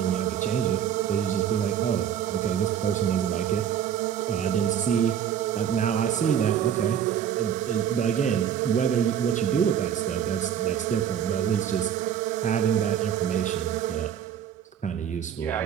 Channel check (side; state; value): left; quieter; 9.2 dB